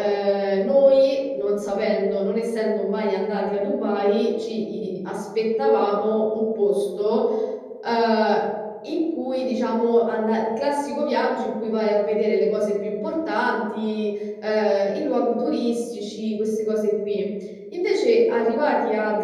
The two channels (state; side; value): identical; both; correlation 1.00